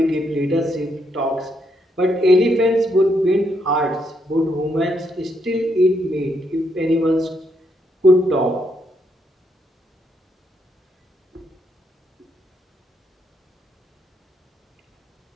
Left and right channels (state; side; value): normal; both; correlation 0.76